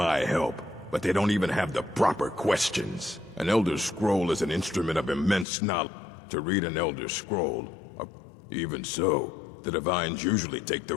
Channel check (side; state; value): right; drops out; at 5.5 s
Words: help, but they don't even have the proper questions. An Elder Scroll is an instrument of immense knowledge. To read an Elder Scroll, even so, the Divines usually take the